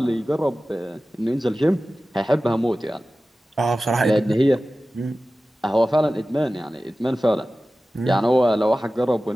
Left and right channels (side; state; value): both; normal; correlation 0.96